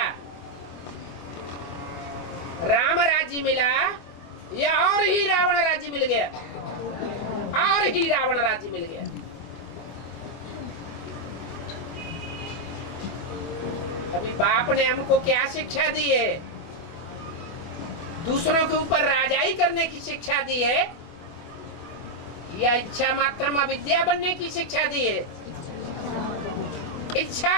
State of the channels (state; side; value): late; right; 25 ms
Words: राम राज्य मिला या और ही रावण राज्य मिल गया? और ही रावण राज्य मिल गया। अभी बाप ने हमको क्या शिक्षा दी है? दूसरों के ऊपर राजाई करने की शिक्षा दी है या इच्छा मात्रम अविद्या बनने की शिक्षा दी है?